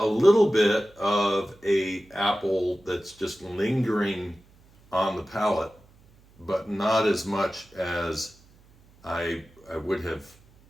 little bit of a apple that's just lingering on the palate, but not as much as I would have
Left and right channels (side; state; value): right; noise; hum, 29 dB below the sound